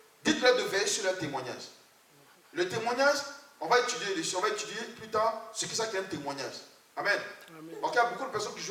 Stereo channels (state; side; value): identical; both; correlation 1.00